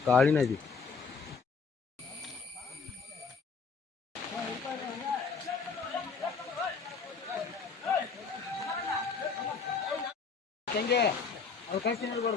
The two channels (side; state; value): right; quieter; 5.2 dB